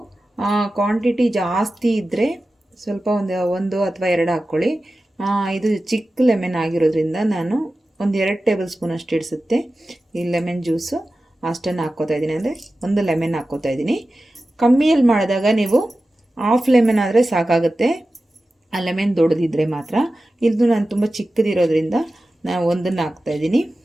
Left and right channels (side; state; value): both; normal; correlation 0.94